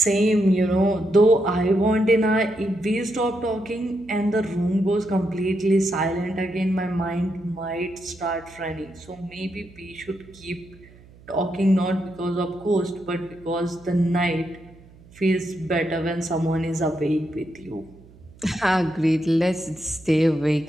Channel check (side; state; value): right; noise; hum, 24 dB below the sound